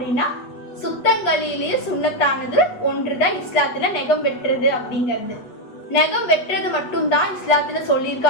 சுத்தங்களிலேயே சுண்ணத்தானது ஒன்றுதான் இஸ்லாத்துல நெகம் வெட்டுறது அப்படிங்கிறது. நெகம் வெட்டுறது மட்டும்தான் இஸ்லாத்துல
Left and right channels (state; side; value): late; right; 8.3 ms